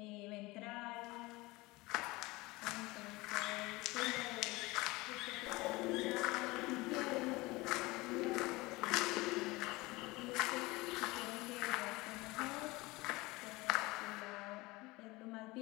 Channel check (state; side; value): quieter; right; 22.0 dB